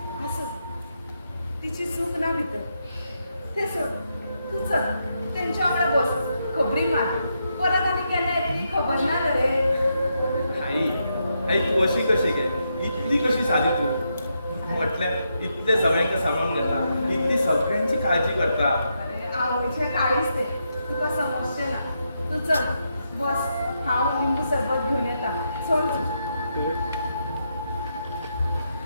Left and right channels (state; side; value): inverted; both; correlation -0.82